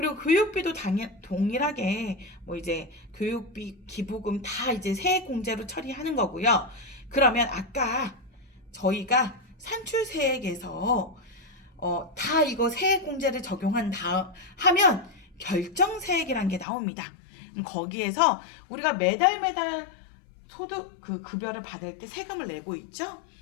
교육비도 동일하게 이제 교육비, 기부금 다 이제 세액 공제로 처리하는 거고요. 그러면 아까 저희가 산출세액에서 다 이거 세액 공제를 하면 결정세액이라는 게 나옵니다. 거기에서 우리가 매달 소득 급여를 받을 때 세금을 내고 있죠?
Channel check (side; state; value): right; drops out; at 16.7 s